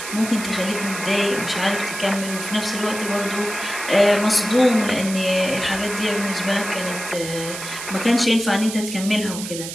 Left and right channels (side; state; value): right; noise; hiss, 8 dB below the sound